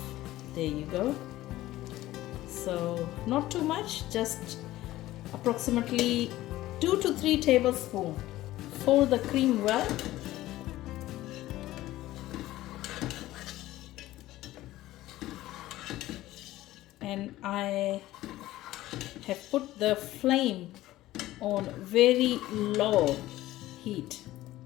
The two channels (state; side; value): quieter; right; 15.9 dB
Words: There you go. So not too much, just approximately 2 to 3 tablespoons. Fold the cream well. And I have put the flame on very low heat.